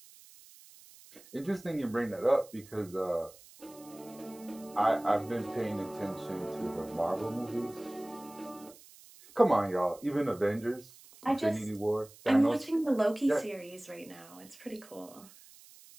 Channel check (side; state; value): right; noise; hiss, 22 dB below the sound